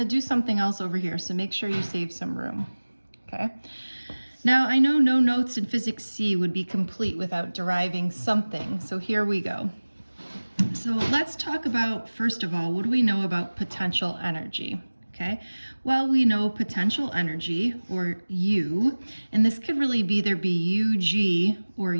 do something else over here, so make sure you save some room, okay? Now, I know no notes in Physics C would be complete without deriving something, so here we go. So let's talk about, first of all, what do we know about potential energy? Okay, well, we know potential energy, or U, and this could really either be UG or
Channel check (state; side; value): inverted; both; correlation -1.00